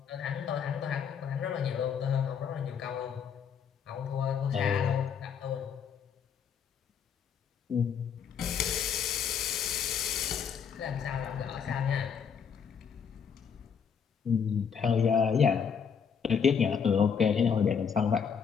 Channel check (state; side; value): quieter; right; 7.0 dB